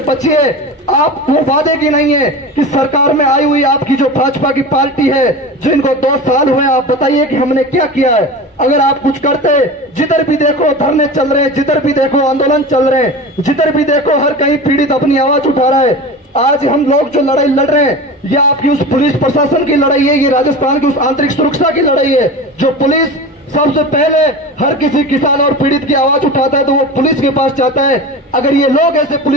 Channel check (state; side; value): normal; both; correlation 0.30